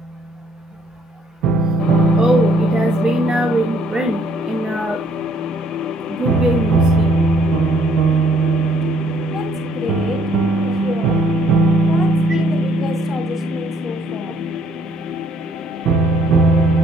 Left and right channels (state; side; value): normal; both; correlation 0.64